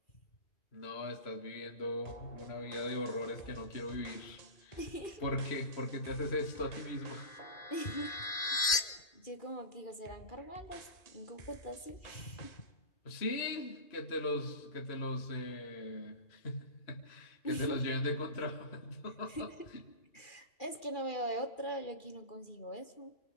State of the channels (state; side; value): late; right; 2.5 ms